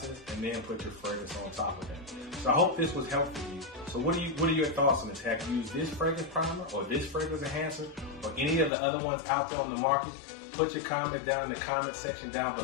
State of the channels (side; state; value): right; drops out; at 8.7 s